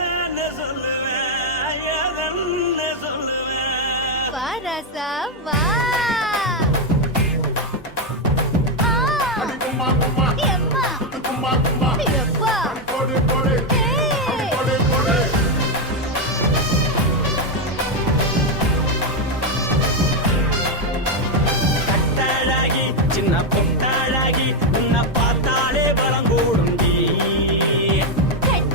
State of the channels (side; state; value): both; normal; correlation 0.05